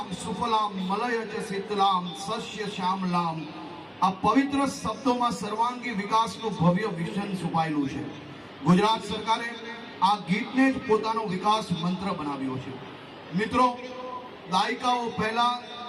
સુફલામ મલયજ શીતલામ સસ્ય શ્યામલામ, આ પવિત્ર શબ્દોમાં સર્વાંગી વિકાસનું ભવ્ય વિઝન છુપાયેલું છે. ગુજરાત સરકારે આ ગીતને જ પોતાનો વિકાસ મંત્ર બનાવ્યો છે. મિત્રો, દાયકાઓ પહેલા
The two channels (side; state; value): both; identical; correlation 1.00